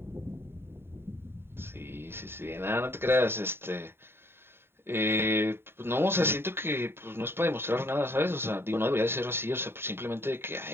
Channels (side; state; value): left; late; 0.11 ms